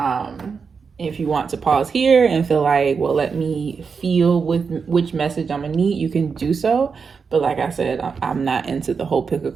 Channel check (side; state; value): left; quieter; 5.5 dB